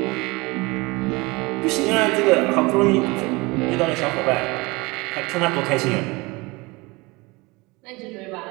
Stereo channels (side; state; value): left; quieter; 24.4 dB